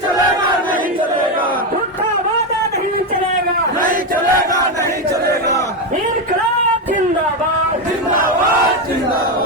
चलेगा नहीं चलेगा झूठा वादा नहीं चलेगा नहीं चलेगा नहीं चलेगा इनकलाब जिंदाबाद जिंदाबाद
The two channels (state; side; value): normal; both; correlation 0.10